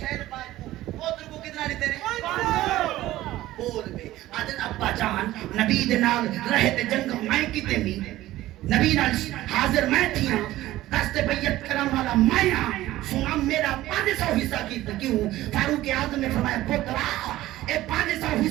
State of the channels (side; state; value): left; quieter; 15.7 dB